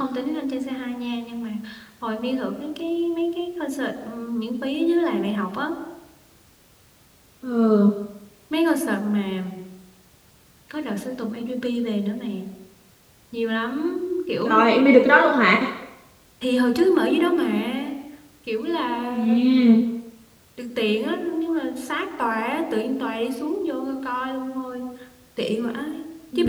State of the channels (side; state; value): both; identical; correlation 1.00